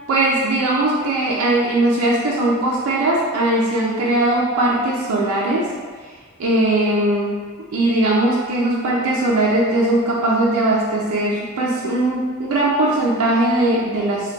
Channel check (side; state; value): both; normal; correlation 0.34